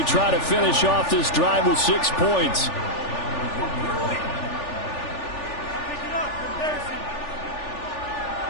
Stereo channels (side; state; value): right; late; 3.4 ms